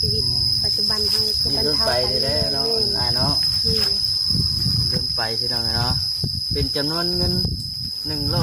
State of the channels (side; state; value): both; normal; correlation 0.95